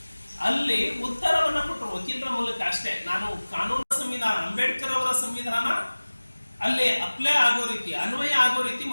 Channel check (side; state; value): both; inverted; correlation -1.00